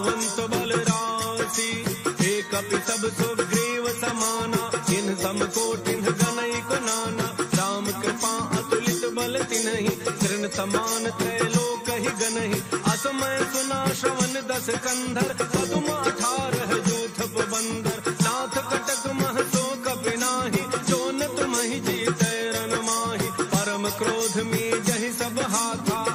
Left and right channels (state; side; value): identical; both; correlation 1.00